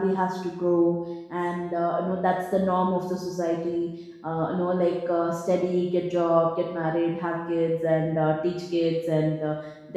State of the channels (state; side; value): identical; both; correlation 1.00